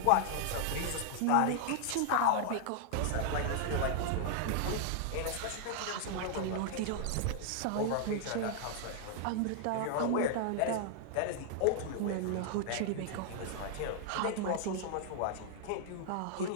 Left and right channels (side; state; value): both; different; correlation -0.01